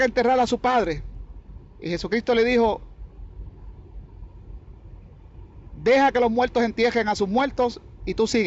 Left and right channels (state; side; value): identical; both; correlation 1.00